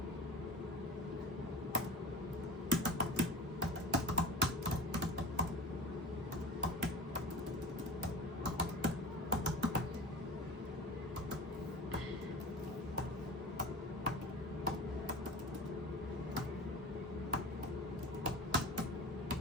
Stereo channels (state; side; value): normal; both; correlation 0.34